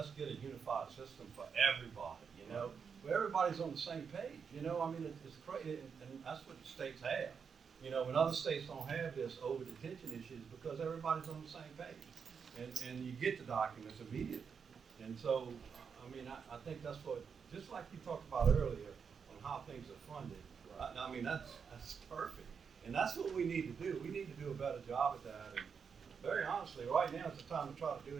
get a unified system for everybody, where everybody's on the same page, I mean, it's crazy, and that's what the states have. When other states don't have this over detention issues because everybody's on the same page and you get the documents immediately. And so, I mean, I think that's what, just like you talked about earlier on how things are funded, I mean, that's perfect. And that's what we need to do. We need to do a better job at that. And very honestly, right now is the time to try to do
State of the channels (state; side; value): quieter; left; 6.3 dB